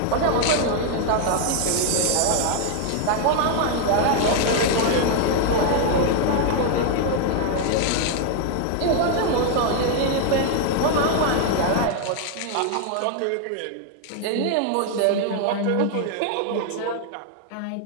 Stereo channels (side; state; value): both; different; correlation 0.00